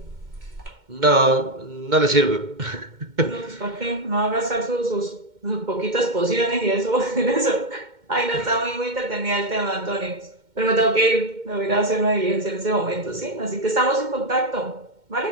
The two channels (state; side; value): late; left; 2.1 ms